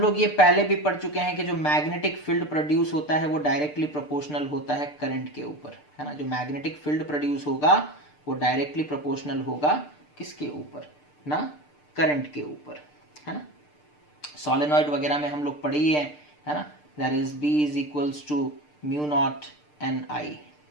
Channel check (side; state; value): right; late; 6.7 ms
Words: लोग ये पहले भी पढ़ चुके हैं कि जो मैग्नेटिक फील्ड प्रोड्यूस होता है वो डायरेक्टली प्रोपोर्शनल होता है करंट के ऊपर, है ना। जो मैग्नेटिक फील्ड प्रोड्यूस होगा वो डायरेक्टली प्रोपोर्शनल होगा किसके ऊपर? ना करंट के ऊपर, है ना। सोलेनॉइड वगैरह में हम लोग पढ़े ही है ना। That is B is equals to mu naught N I,